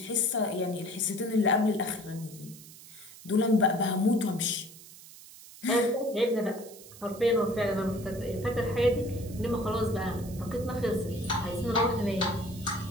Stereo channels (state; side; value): noise; right; hiss, 18 dB below the sound